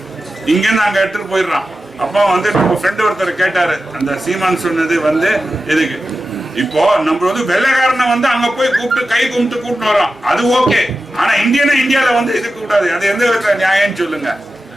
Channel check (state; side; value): normal; both; correlation 0.93